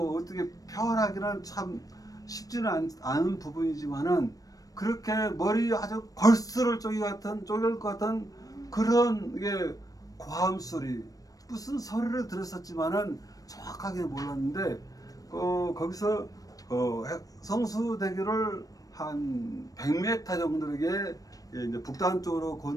어떻게 표현하기는 참 쉽지는 않은 부분이지만은 그렇게 머리 아주 골수를 쪼갤 것 같은 그런 이게 고함 소리 무슨 소리를 들었었지만은 정확하게 몰랐는데 거기서 성수대교를 한 100m 정도에게 이제 북단 쪽으로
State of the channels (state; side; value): late; right; 0.18 ms